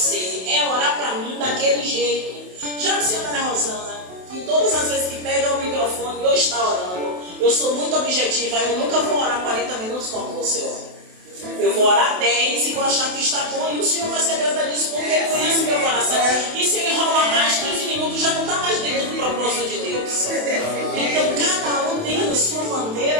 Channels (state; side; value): late; left; 27 ms